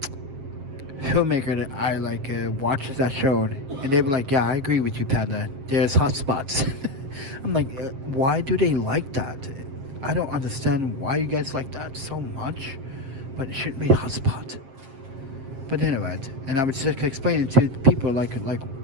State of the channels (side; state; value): left; late; 7.5 ms